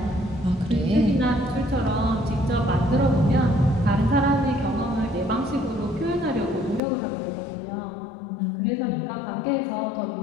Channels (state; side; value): drops out; right; at 6.8 s